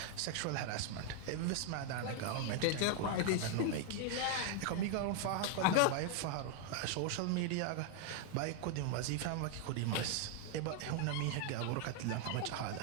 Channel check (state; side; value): different; both; correlation 0.00